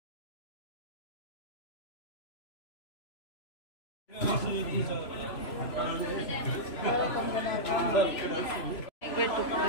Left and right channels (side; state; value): right; late; 3.0 ms